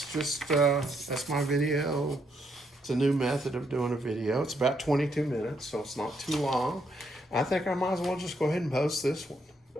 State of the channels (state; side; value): normal; both; correlation 0.75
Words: my video. It's a new method of doing a video. It's about 22 minutes, so it's not too long. I think I might as well just go ahead and post this one.